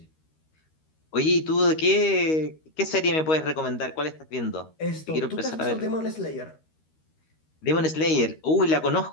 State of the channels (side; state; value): right; late; 13 ms